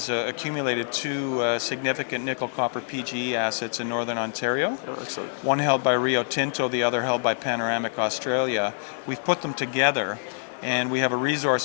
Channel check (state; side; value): silent; right; 61 dB below the other